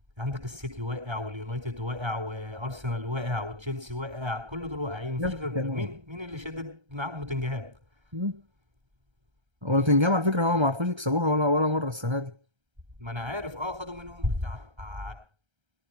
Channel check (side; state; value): left; late; 1.3 ms